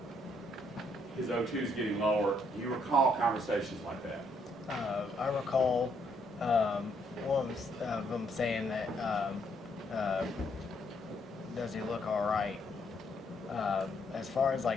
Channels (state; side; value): normal; both; correlation 0.71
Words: His O2 is getting lower. Do you recall conversations like that? I recall one of them saying that, does he look all right? As far as